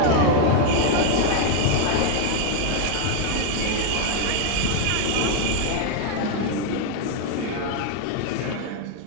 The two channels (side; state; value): both; different; correlation 0.01